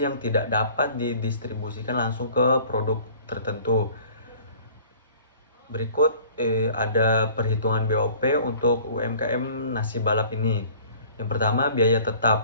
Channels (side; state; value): both; inverted; correlation -0.50